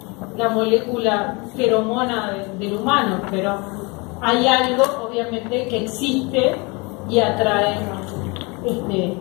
la molécula feromona del humano, pero hay algo obviamente que existe y atrae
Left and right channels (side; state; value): right; quieter; 28.0 dB